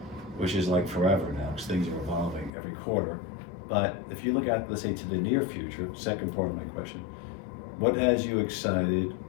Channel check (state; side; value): drops out; right; at 2.5 s